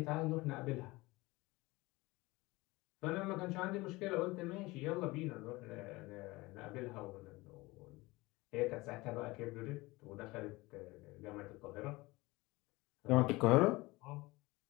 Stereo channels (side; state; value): right; quieter; 21.6 dB